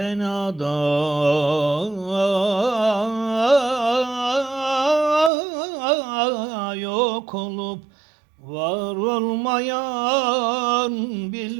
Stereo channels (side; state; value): left; drops out; at 5.3 s